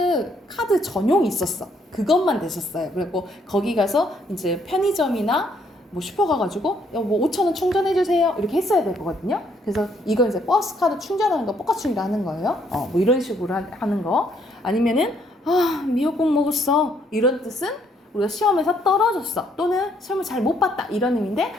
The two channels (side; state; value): both; normal; correlation 0.69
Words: 카드 전용이 있었어. 그것만 됐었어요. 그리고 거기 가서 이제 편의점이나 뭐 슈퍼 가가지고 뭐 5,000원 충전해주세요 이렇게 했어야 될 거거든요. 그래서 이거 이제 버스 카드 충전하는 거 뻑가충이라 하는 거예요. 뭐 이런 식으로 하는 거. 아니면은 미역국 먹었어 이런 뜻은 우리가 시험에서 떨어졌어 또는 시험을 잘 못 봤다 이런 의미인데,